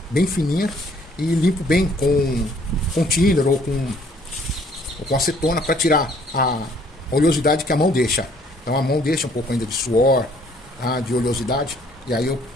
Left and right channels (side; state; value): both; normal; correlation 0.61